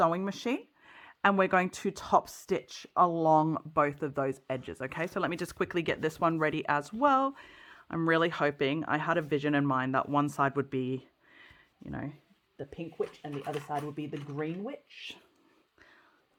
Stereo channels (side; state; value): both; identical; correlation 1.00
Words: machine and we're going to top stitch along both of those edges, okay? So let me just quickly get this one ready as well. I'm really hoping, I had a vision in mind that one side would be, you know, the pink witch and the other side would be the green witch.